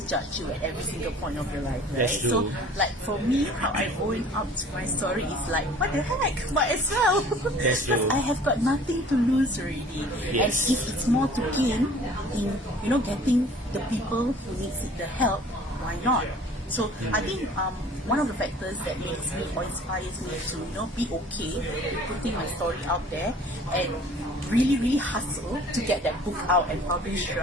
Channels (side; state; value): both; normal; correlation 0.49